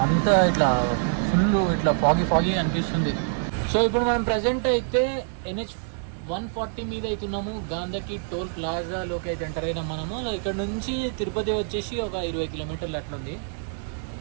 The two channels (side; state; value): left; silent; digital silence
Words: అంతా ఇట్లా ఫుల్ ఇట్లా ఫాగీ అనిపిస్తుంది. సో ఇప్పుడు మనం ప్రజెంట్ అయితే NH 140 మీద అవుతున్నాము. గాంధకి టోల్ ప్లాజాలోకి అయితే ఎంటర్ అయినాం మనము. ఇక్కడ నుంచి తిరుపతి వచ్చేసి ఒక 20 కిలోమీటర్లు అట్లా ఉంది.